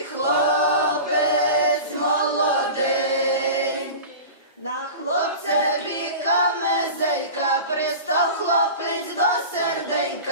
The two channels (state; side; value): inverted; both; correlation -0.33